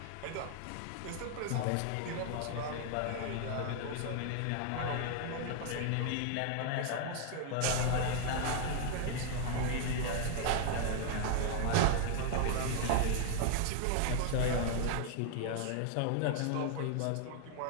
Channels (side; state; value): both; different; correlation 0.00